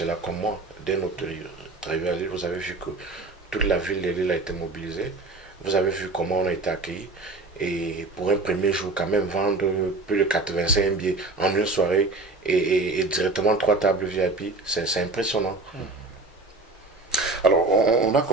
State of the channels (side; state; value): left; quieter; 3.3 dB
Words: comme moi. Dès notre arrivée à Lille, vous avez vu que toute la ville de Lille a été mobilisée. Vous avez vu comment on a été accueillis. Et pour un premier jour, quand même, vendre plus de 85 billets en une soirée et directement 3 tables VIP, c'est impressionnant. Alors, on a